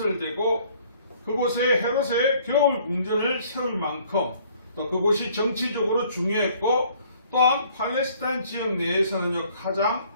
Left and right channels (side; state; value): both; inverted; correlation -0.59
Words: 그곳에 헤롯의 겨울 궁전을 세울 만큼 또 그곳이 정치적으로 중요했고, 또한 팔레스타인 지역 내에서는요, 가장